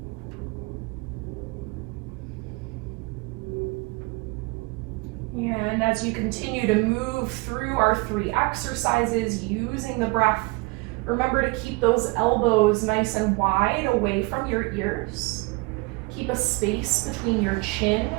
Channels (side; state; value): left; quieter; 25.7 dB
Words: And as you continue to move through our 3 exercises using the breath, remember to keep those elbows nice and wide away from your ears. Keep a space between your chin